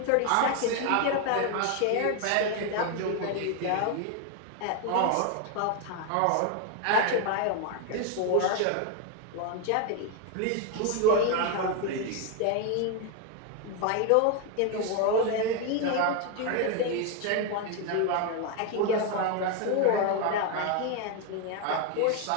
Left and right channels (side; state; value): both; different; correlation 0.01